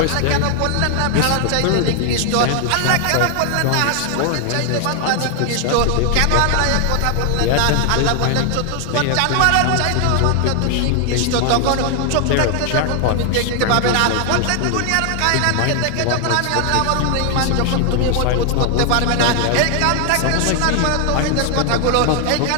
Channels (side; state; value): both; different; correlation 0.00